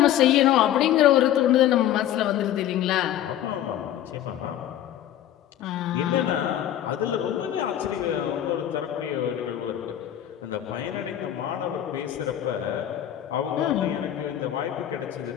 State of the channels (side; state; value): right; quieter; 11.6 dB